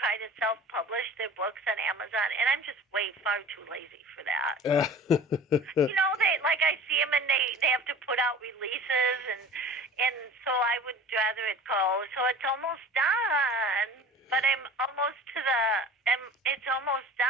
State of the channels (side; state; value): both; normal; correlation 0.41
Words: to self-publish their books on Amazon, and I'm just way far too lazy for that. I see them, and they have to put out releases, and so I would rather it go. So it's almost done, but I'm almost to it's almost